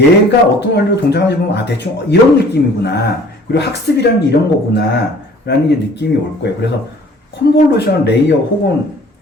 어떤 원리로 동작하는지 보면 아 대충 이런 느낌이구나. 그리고 학습이라는 게 이런 거구나 라는 게 느낌이 올 거예요. 그래서 컨볼루션 레이어 혹은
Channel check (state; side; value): normal; both; correlation 0.52